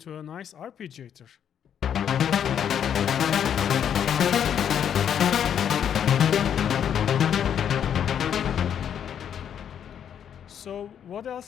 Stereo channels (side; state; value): right; quieter; 8.8 dB